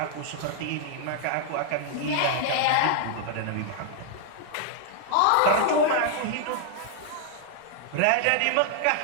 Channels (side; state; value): both; different; correlation -0.01